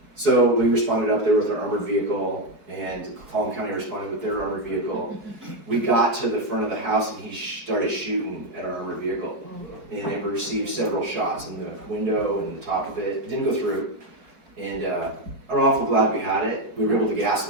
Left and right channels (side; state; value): left; late; 4.5 ms